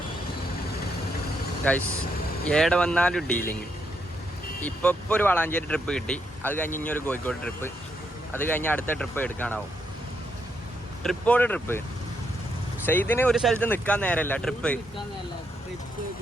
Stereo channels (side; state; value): both; normal; correlation 0.78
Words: ഗൈസ് ഏടെ വന്നാലും ഡീലിങ്. ഇപ്പോൾ ഒരു വളാഞ്ചേരി ട്രിപ്പ് കിട്ടി, അത് കഴിഞ്ഞ് ഇനി ഒരു കോഴിക്കോട് ട്രിപ്പ്, അത് കഴിഞ്ഞ് അടുത്ത ട്രിപ്പ് എടുക്കാനാവും. ട്രിപ്പോട് ട്രിപ്പ്. സെയ്ദിന് ഒരു സ്ഥലത്ത് നിൽക്കാൻ നേരമല്ല, ട്രിപ്പ്.